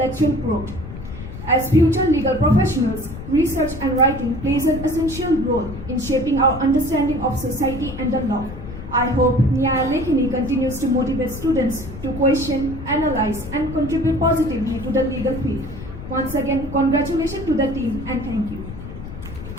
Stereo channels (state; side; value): noise; left; rumble, 11 dB below the sound